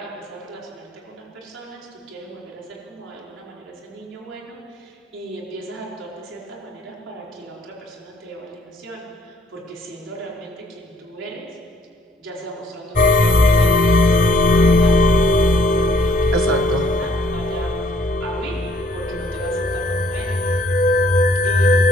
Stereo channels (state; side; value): normal; both; correlation 0.63